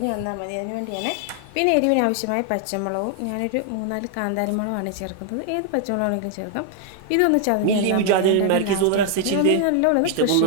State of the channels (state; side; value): different; both; correlation 0.00